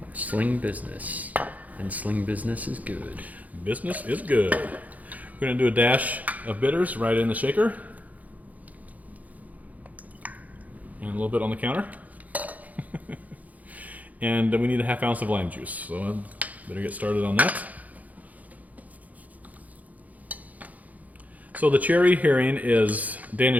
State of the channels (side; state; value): left; late; 0.076 ms